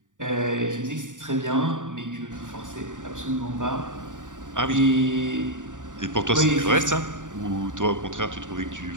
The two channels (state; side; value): late; left; 0.87 ms